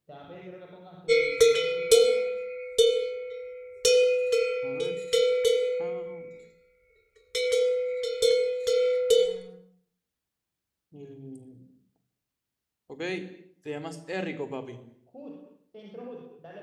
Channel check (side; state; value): both; identical; correlation 1.00